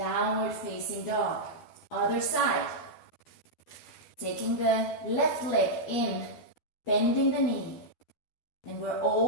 facing dog. Other side. Taking the left leg in, bending the knee. And we're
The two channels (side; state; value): right; late; 12 ms